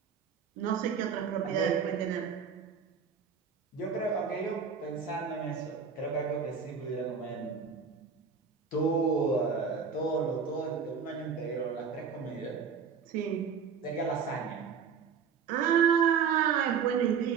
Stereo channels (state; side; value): quieter; left; 6.4 dB